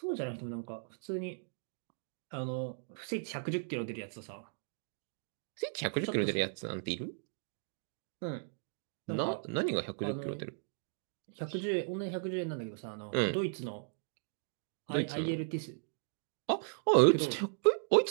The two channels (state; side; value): silent; left; digital silence